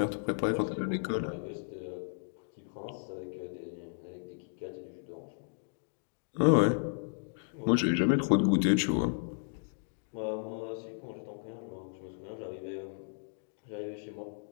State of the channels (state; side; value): silent; right; digital silence